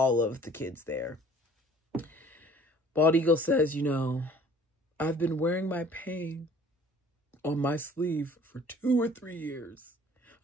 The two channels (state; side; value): normal; both; correlation 0.52